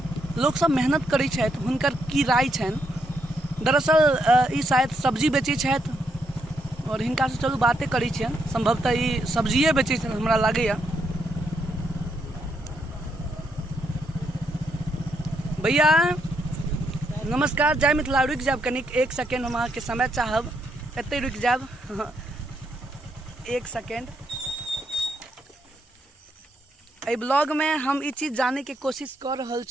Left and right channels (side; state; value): both; normal; correlation 0.77